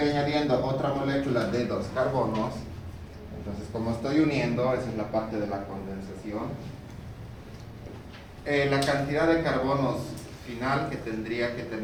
otra molécula de 2 carbonos, entonces como estoy uniendo, esa es la parte de la condensación, la cantidad de carbonos final que tendría que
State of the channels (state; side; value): identical; both; correlation 1.00